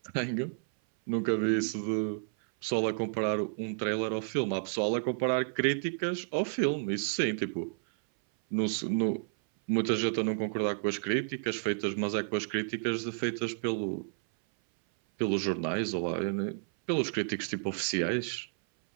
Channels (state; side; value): silent; left; 57 dB below the other